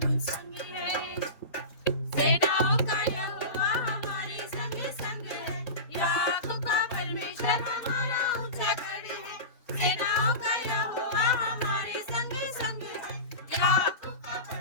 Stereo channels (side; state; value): right; late; 4.0 ms